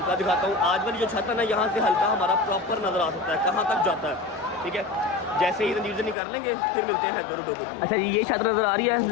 دکھاتا ہوں. آج والی جو چھت ہے نا, یہاں سے ہلکا ہمارا پراپر نظر آ سکتا ہے کہاں تک جاتا ہے, ٹھیک ہے. جیسے ہی زنجیر زنی کر لیں گے پھر ملتے ہیں حیدر ڈوگر. اچھا جی, یہ چھت نظر آ رہی ہے.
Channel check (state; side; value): drops out; right; at 6.2 s